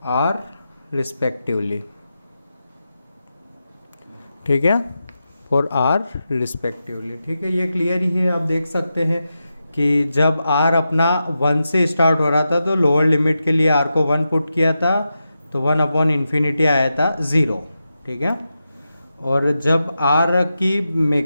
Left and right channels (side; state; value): both; inverted; correlation -0.89